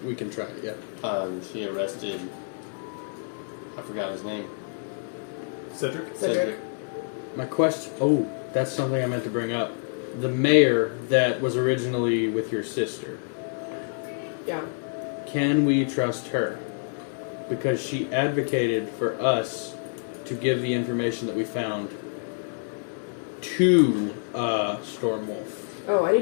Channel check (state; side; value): silent; right; digital silence